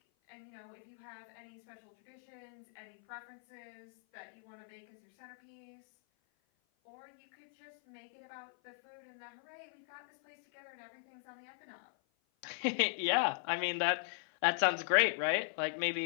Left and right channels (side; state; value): right; silent; 52 dB below the other